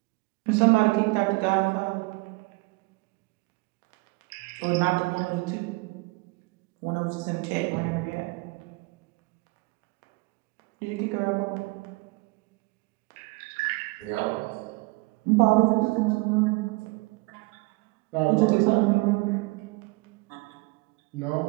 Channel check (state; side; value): quieter; left; 26.1 dB